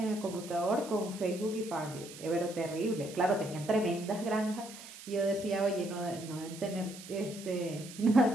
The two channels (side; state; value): right; noise; hiss, 15 dB below the sound